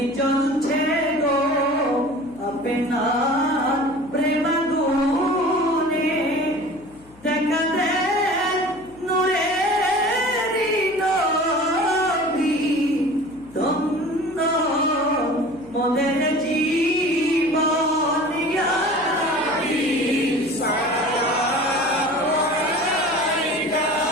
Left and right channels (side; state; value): left; noise; hum, 26 dB below the sound